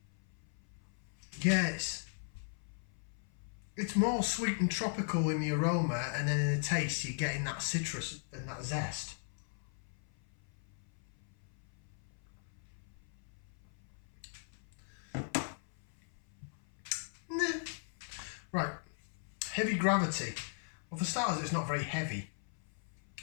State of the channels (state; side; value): silent; right; 52 dB below the other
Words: Yes. It's more sweet and tropical in the aroma, and then in the taste you're getting that citrus and that zest. Nah. Right, heavy Gravity. Well, for starters, it's not very heavy.